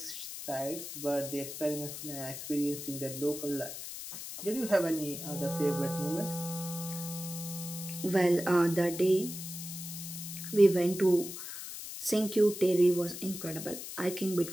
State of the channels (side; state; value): left; noise; hiss, 9 dB below the sound